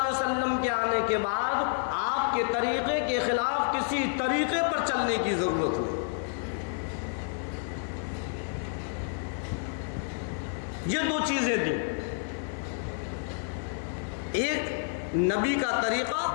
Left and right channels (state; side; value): silent; right; digital silence